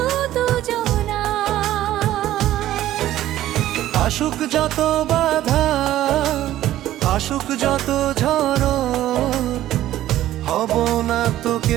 দুজনা। আসুক যত বাধা, আসুক যত ঝড়, হব না তো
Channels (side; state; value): left; quieter; 13.7 dB